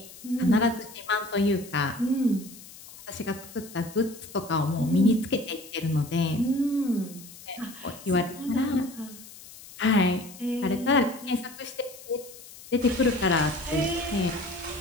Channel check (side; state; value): left; noise; hiss, 18 dB below the sound